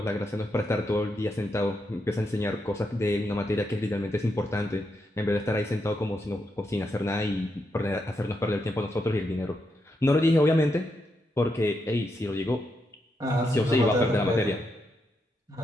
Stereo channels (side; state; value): both; normal; correlation 0.82